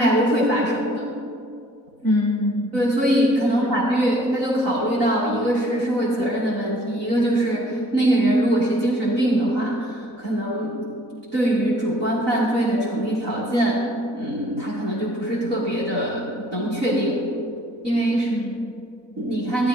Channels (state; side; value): late; left; 4.0 ms